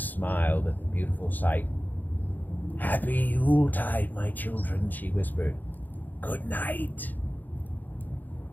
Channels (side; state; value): right; late; 0.085 ms